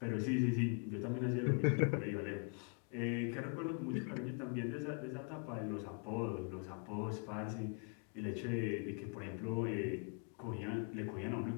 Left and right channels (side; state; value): right; quieter; 39.0 dB